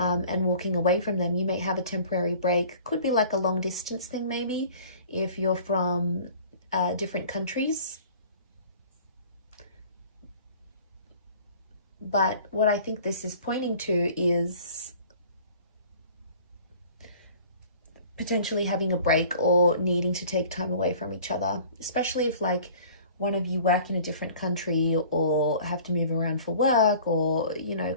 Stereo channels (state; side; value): inverted; both; correlation -0.48